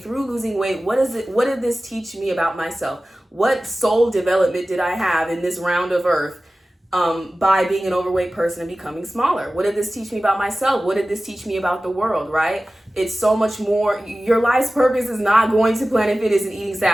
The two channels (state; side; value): normal; both; correlation 0.96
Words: losing weight, what did this teach me about myself? What soul development did I have in this round of earth by being an overweight person and becoming smaller? What did this teach me about myself? What did this teach me about the world, right? It's so much more. Your life's purpose is not going to Planet Fitness and eating